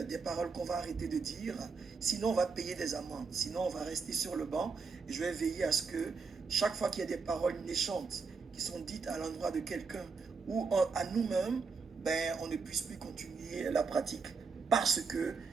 des paroles qu'on va arrêter de dire. Sinon, on va payer des amendes. Sinon, on va rester sur le banc. Et je vais veiller à ce que chaque fois qu'il y a des paroles méchantes qui sont dites à l'endroit de quelqu'un ou à nous-mêmes, ben, on ne puisse plus continuer la pratique parce que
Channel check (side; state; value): left; quieter; 4.9 dB